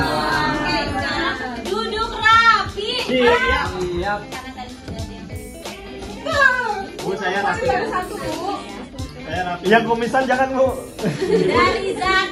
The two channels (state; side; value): identical; both; correlation 1.00